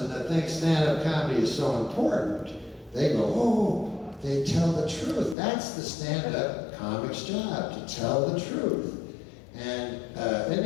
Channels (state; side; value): drops out; right; at 5.4 s